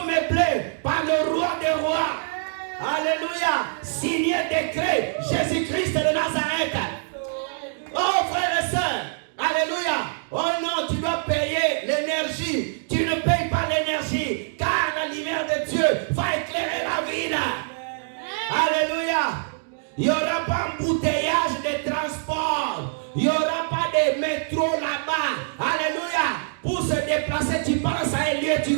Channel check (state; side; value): silent; left; digital silence